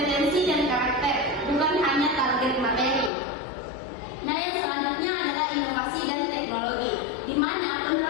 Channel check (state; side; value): drops out; right; at 3.1 s